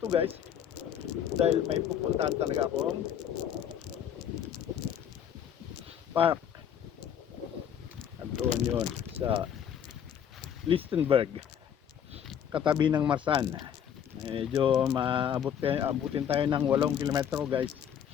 guys dahil may pupuntahan talaga akong park. At doon yun sa Lichtenberg, katabi ng Marsan. Medyo abutin tayo ng 8 kilometro guys.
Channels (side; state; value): right; quieter; 8.9 dB